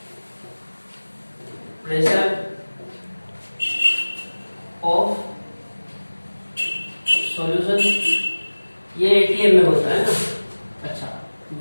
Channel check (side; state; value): both; inverted; correlation -1.00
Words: प्रेशर ऑफ सॉल्यूशन, ये एटीएम में होता है ना। अच्छा